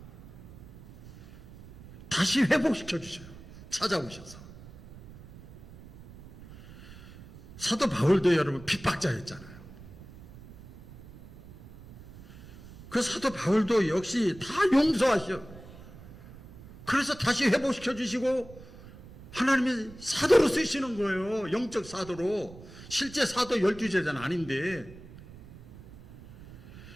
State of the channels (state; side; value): noise; right; rumble, 18 dB below the sound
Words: 다시 회복시켜 주셔요. 찾아오셔서. 사도 바울도 여러분 핍박자였잖아요. 그 사도 바울도 역시 다 용서하셔. 그래서 다시 회복시켜 주시고 하나님이 사도로 쓰시는 거예요. 영적 사도로. 실제 사도 12제자는 아닌데.